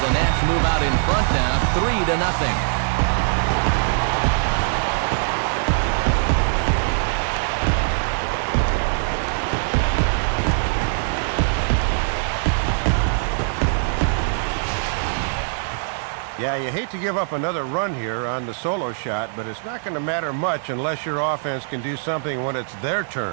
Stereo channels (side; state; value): left; silent; digital silence